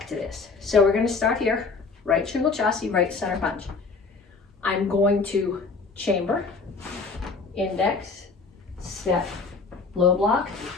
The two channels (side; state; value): right; quieter; 4.4 dB